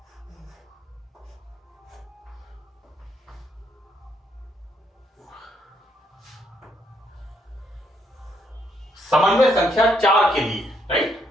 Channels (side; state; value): both; normal; correlation 0.73